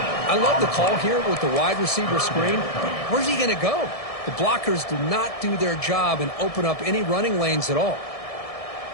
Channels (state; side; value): late; right; 1.7 ms